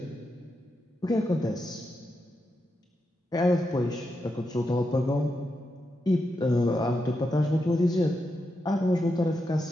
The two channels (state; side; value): normal; both; correlation 0.86